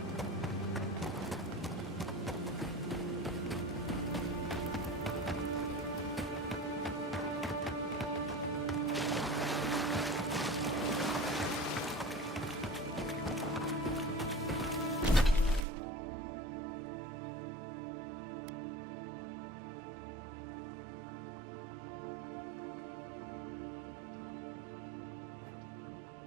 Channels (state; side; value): drops out; left; at 15.7 s